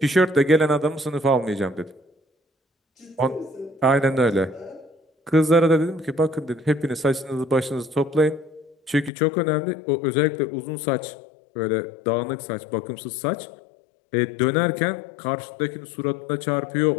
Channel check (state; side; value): drops out; right; at 9.1 s